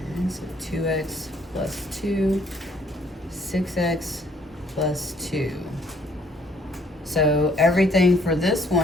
And so 2x plus 2, 6x plus 2. So everything for this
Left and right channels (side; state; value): both; normal; correlation 0.63